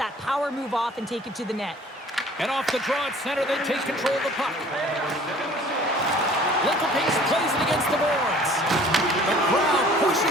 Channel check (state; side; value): normal; both; correlation 0.51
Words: power move off and take it to the net. And off the draw at center, they take control of the puck. Lincoln Pinks plays it against the boards. The crowd